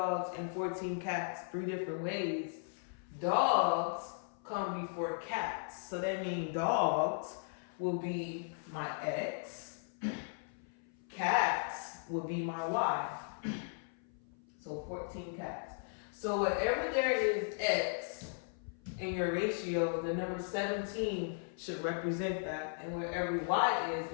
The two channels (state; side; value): silent; right; 53 dB below the other